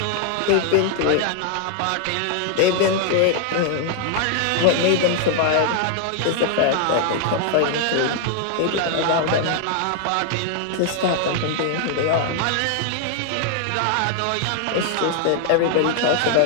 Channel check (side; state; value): both; different; correlation 0.00